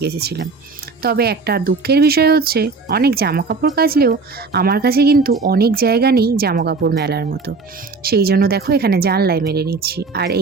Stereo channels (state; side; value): quieter; left; 4.3 dB